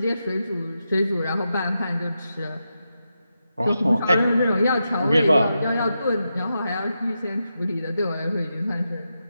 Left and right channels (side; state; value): both; inverted; correlation -0.87